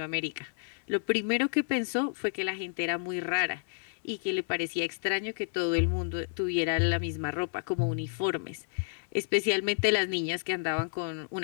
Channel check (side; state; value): right; silent; 58 dB below the other